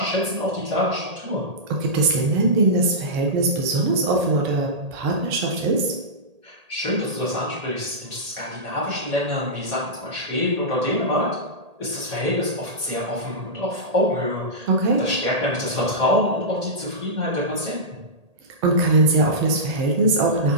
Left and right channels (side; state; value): left; late; 1.8 ms